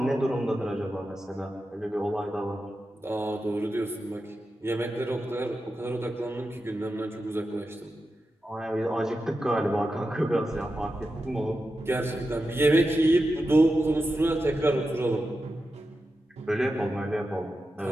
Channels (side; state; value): both; normal; correlation 0.90